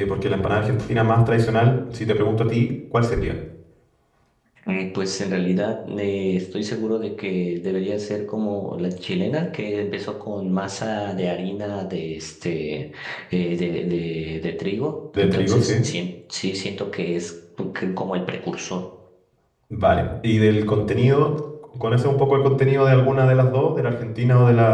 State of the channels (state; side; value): identical; both; correlation 1.00